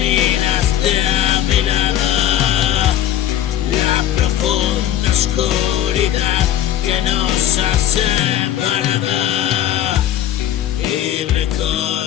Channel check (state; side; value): quieter; right; 11.6 dB